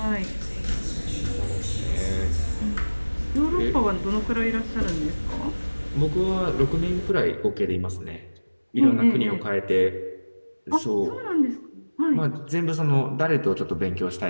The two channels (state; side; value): inverted; both; correlation -1.00